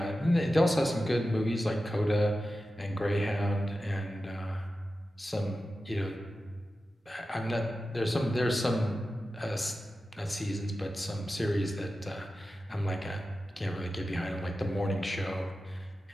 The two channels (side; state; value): both; normal; correlation 0.93